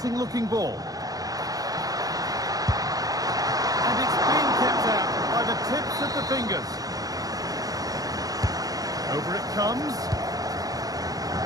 looking ball. And it's being kept out by the tips of the fingers. Over it comes.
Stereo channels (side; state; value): left; late; 0.18 ms